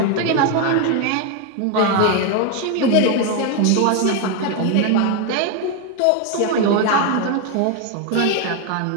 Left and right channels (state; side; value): different; both; correlation 0.02